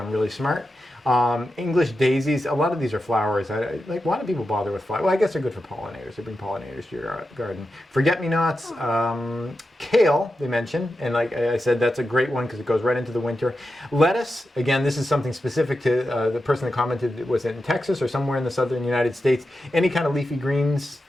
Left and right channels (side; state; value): both; normal; correlation 0.90